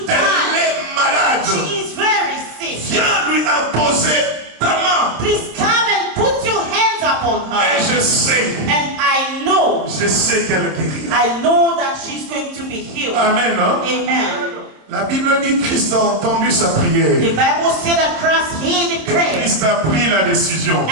die. Elle est malade. She is very sick. Viens lui imposer ta main. Please come and put your hands upon her. Et je sais. And I know. Je sais qu'elle guérira. I know that she's going to be healed. Amen. Hein? Amen. La Bible dit que Christ a entendu sa prière. The Bible said that Christ heard the prayer. Christ a pris la décision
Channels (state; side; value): late; left; 27 ms